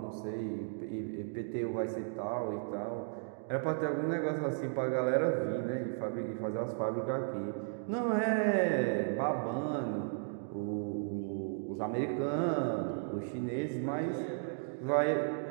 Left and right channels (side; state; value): left; silent; digital silence